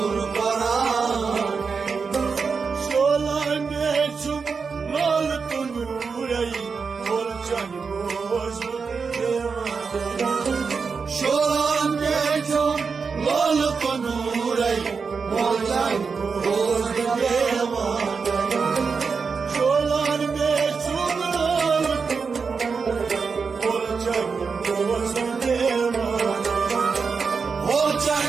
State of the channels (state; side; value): quieter; left; 5.3 dB